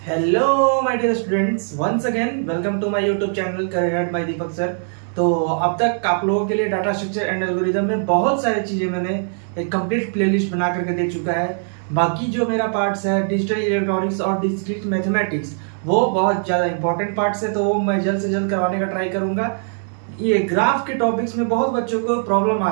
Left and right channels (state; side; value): silent; left; digital silence